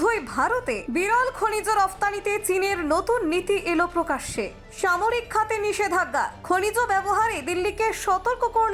ভারতে বিরল খনিজ রফতানিতে চীনের নতুন নীতি এলো প্রকাশ্যে। সামরিক খাতে নিষেধাজ্ঞা, খনিজ ব্যবহারে দিল্লিকে সতর্ক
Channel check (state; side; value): identical; both; correlation 1.00